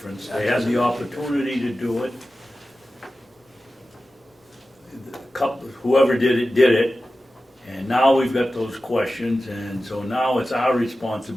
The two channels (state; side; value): normal; both; correlation 0.94